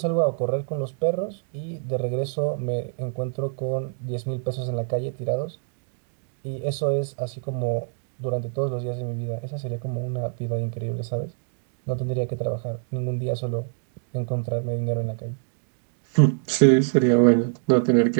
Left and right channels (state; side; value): silent; left; digital silence